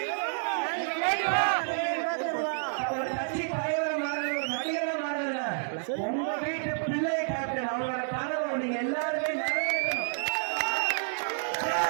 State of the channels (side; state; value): left; silent; digital silence